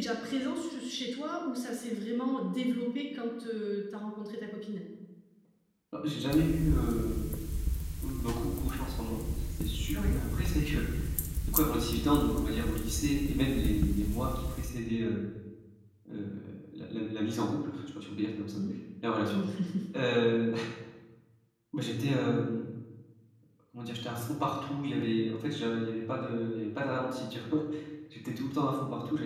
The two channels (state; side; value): identical; both; correlation 1.00